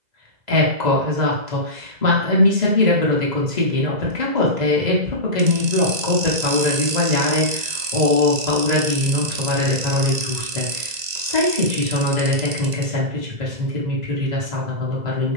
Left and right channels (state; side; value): late; left; 2.0 ms